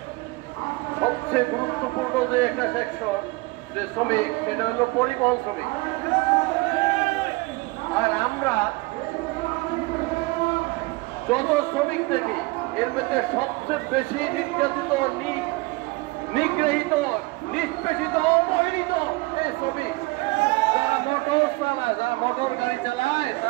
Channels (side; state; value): left; quieter; 23.6 dB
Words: সবচেয়ে গুরুত্বপূর্ণ যে একটা সেকশন যে শ্রমিক, সেটা হলো পরিবহন শ্রমিক। আর আমরা যত শ্রমিক দেখি এর মধ্যে সবচেয়ে বেশি নির্যাতিত, নিগৃহীত, নিষ্পেষিত, অবহেলিত এই শ্রমিক। যারা মোটর চালায়, যারা মোটর গাড়ি চালায়,